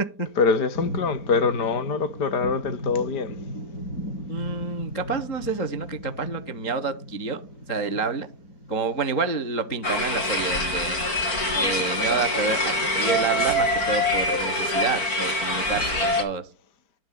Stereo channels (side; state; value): right; late; 4.5 ms